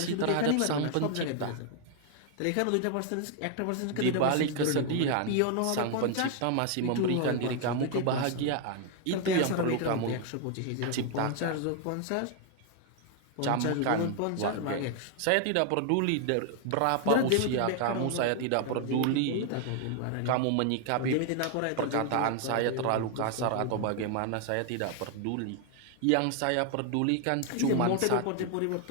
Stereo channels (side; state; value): both; different; correlation 0.00